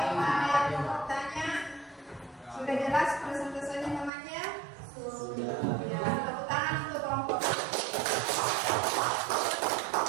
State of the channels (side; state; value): left; drops out; at 4.1 s